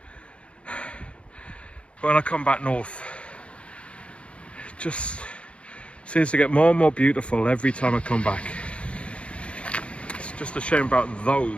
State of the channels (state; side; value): late; right; 0.060 ms